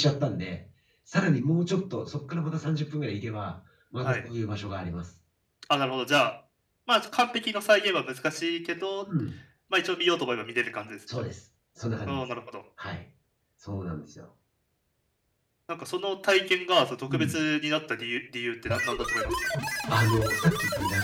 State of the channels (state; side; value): identical; both; correlation 1.00